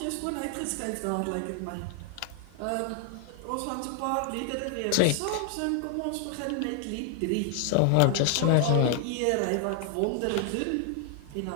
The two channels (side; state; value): both; different; correlation 0.00